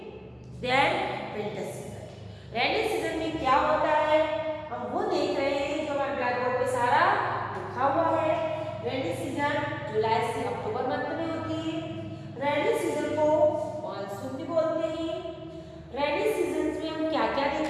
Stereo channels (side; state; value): both; identical; correlation 1.00